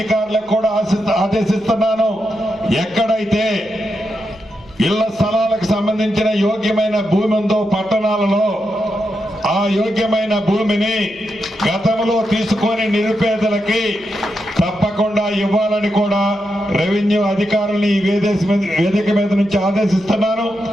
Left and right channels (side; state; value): right; noise; hum, 29 dB below the sound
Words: కూడా ఆదేశిస్తున్నాను, ఎక్కడైతే ఇళ్ల స్థలాలకు సంబంధించిన యోగ్యమైన భూమి ఉందో పట్టణాలలో ఆ యోగ్యమైన భూమిని గతంలో తీసుకొని నిరుపేదలకి తప్పకుండా ఇవ్వాలని కూడా రెవెన్యూ అధికారుల్ని ఈ వేదిక మీద నుంచి ఆదేశిస్తున్నాను.